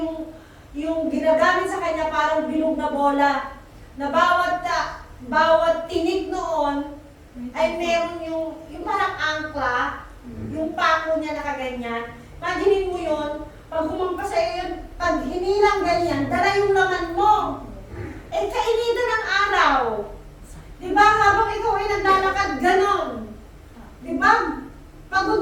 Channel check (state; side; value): identical; both; correlation 1.00